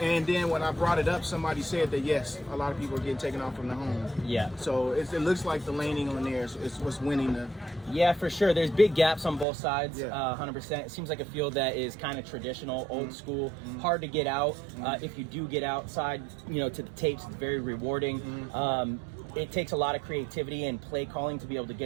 and then when I brought it up, somebody said that yes, a lot of people are getting taken off from the home. Yeah. So it looks like the laning on there is what's winning the. Yeah, for sure. There's big gaps on both sides. Yeah. 100%. It seems like a field that is kind of traditional, old school, hard to get out. If you do get outside, to the tapes, it's very rewarding. It takes a lot of creativity and play calling to be able to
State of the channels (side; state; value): left; drops out; at 9.5 s